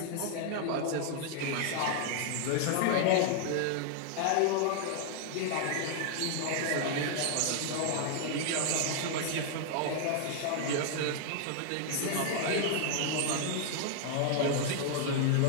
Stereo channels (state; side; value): different; both; correlation 0.00